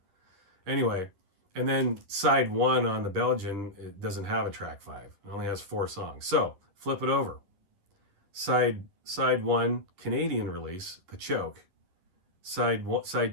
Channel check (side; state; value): left; late; 11 ms